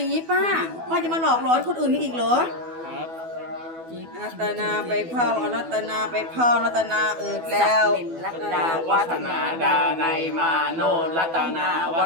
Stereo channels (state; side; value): late; left; 12 ms